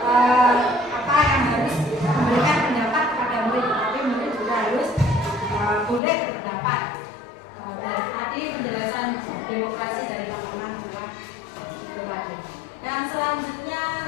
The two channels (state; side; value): drops out; right; at 6.0 s